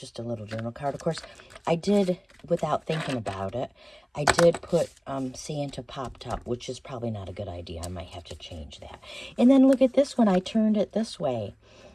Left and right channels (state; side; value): identical; both; correlation 1.00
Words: a little journal card. Of course, I did, without thinking about it, I did put Santa popped up, which is probably not a good idea. I might have to change that. And then look at this one. I turned it this way.